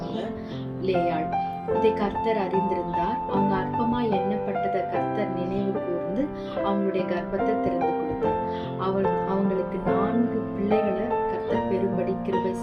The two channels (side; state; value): both; identical; correlation 1.00